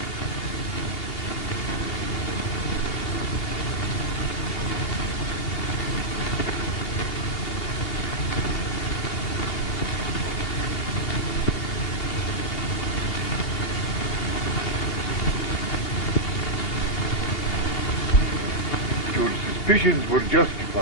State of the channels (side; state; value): right; late; 9.5 ms